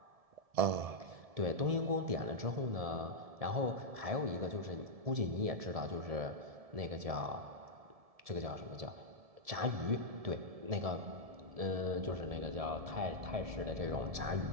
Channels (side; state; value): left; late; 1.7 ms